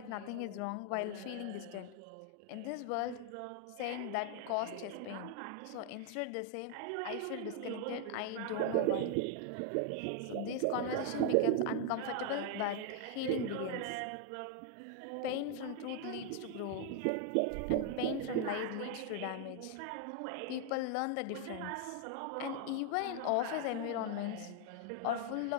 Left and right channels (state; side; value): different; both; correlation 0.00